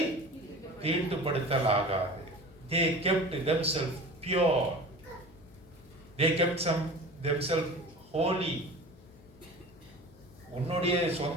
தீட்டுப்படுத்தலாகாது. They kept themselves pure. They kept themselves holy. உன்னுடைய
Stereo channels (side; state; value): left; noise; hum, 24 dB below the sound